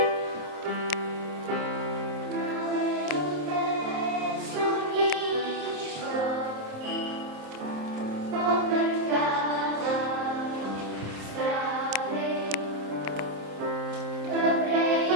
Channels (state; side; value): late; left; 27 ms